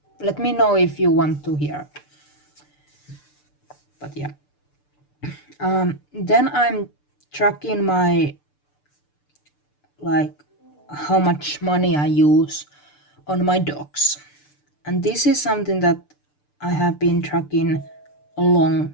Let me know if you want to hear. But yeah. Then I'm tracking my, like, how much money I use on my dogs. And this is something that I have been tracking a long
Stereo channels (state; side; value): late; right; 6.8 ms